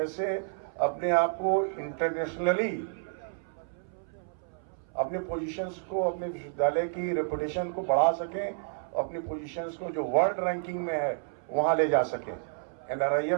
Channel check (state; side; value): silent; left; 58 dB below the other